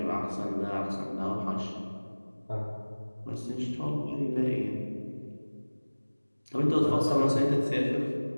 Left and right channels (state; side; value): inverted; both; correlation -1.00